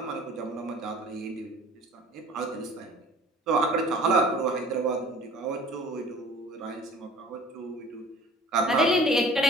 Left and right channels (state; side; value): normal; both; correlation 0.47